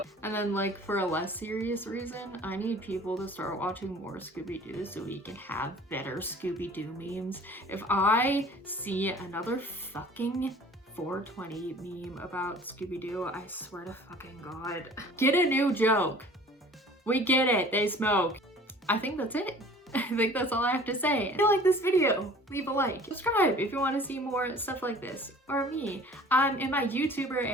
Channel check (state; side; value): normal; both; correlation 0.48